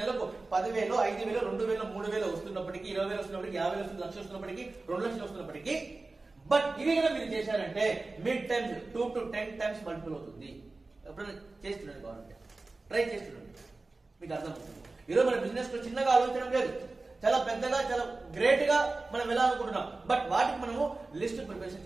10,000, 5,000, 2,000, 3,000 వస్తున్నప్పటికీ, 20,000 వస్తున్నప్పటికీ, 50,000 వస్తుంది, 1,00,000 వస్తున్నప్పటికీ, 2,00,000 వస్తున్నప్పటికీ, బట్ ఇవి కూడా మీరు చేశారంటే mid times 2 to 10 times multiple అవుతుంది. ఎప్పుడైనా చేస్తుండండి, కావాలంటే ట్రై చేస్తుండండి, మీకు అర్థమవుతుంది. ఈరోజు మన బిజినెస్ లో చిన్నగా ఆలోచించడం లేదు, చాలా పెద్దగా, చాలా గ్రేట్ గా మనం వెళ్ళాలనుకుంటున్నాం. బట్ వాటికి మనము లిస్ట్ ప్రిపరేషన్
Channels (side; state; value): left; quieter; 3.4 dB